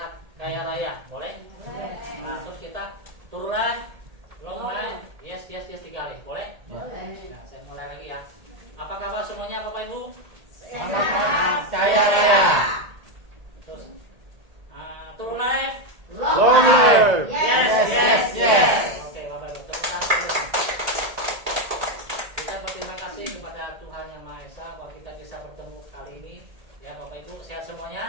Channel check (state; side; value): late; left; 1.8 ms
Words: kaya raya, boleh? Boleh. Nah, terus kita turun live, long live, yes 3 kali, boleh? Boleh. Nah, saya mulai lagi ya. Apa kabar semuanya Bapak Ibu? Sehat. Kaya raya. Terus turun live, Long live. Yes. Oke Bapak Ibu, terima kasih. Kita berterima kasih kepada Tuhan Yang Maha Esa bahwa kita bisa bertemu kali ini. Ya Bapak Ibu, sehat